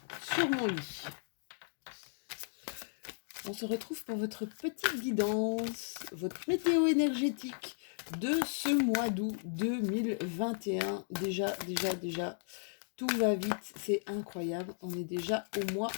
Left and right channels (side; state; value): right; silent; digital silence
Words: sur mon lit. On se retrouve pour votre petite guidance, votre météo énergétique de ce mois d'août 2021. Déjà, tout va vite, c'est incroyable. On est déjà au